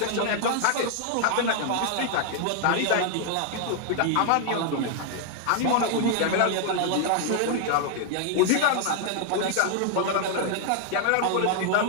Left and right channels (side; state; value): both; different; correlation 0.00